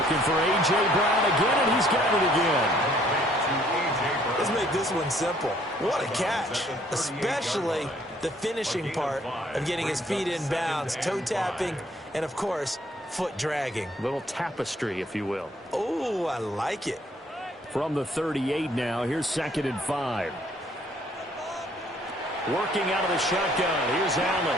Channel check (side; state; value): both; normal; correlation 0.62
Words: for A.J. Brown again, and he's got it again. Let's make this one simple. What a catch, especially the finishing part of getting his feet in bounds, toe tapping, and of course, foot dragging. Little tapestry, if you will. Oh, I like it. From the 38 now, here's 2nd and 5. Working out of the shotgun, here's